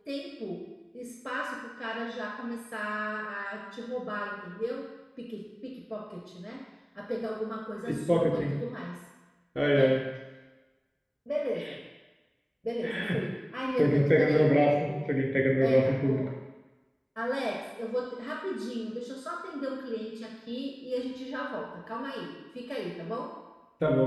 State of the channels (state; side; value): identical; both; correlation 1.00